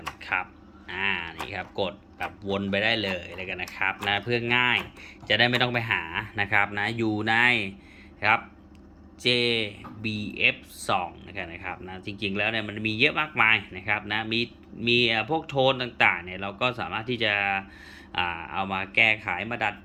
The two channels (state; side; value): identical; both; correlation 1.00